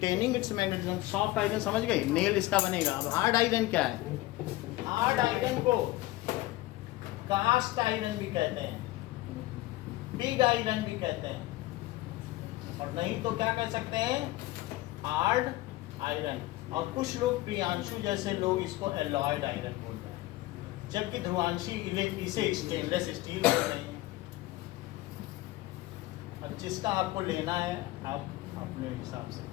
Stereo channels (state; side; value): quieter; right; 18.0 dB